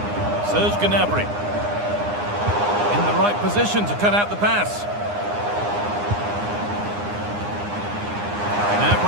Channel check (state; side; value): late; left; 9.8 ms